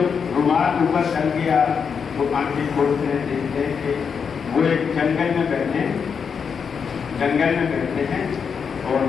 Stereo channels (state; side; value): quieter; right; 6.4 dB